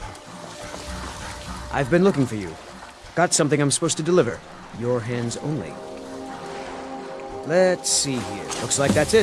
I've been looking for you. Got something I'm supposed to deliver. Your hands only. Let's see here. Looks like that's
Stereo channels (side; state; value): both; identical; correlation 1.00